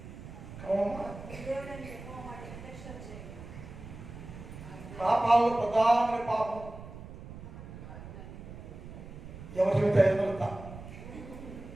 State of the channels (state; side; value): noise; right; rumble, 13 dB below the sound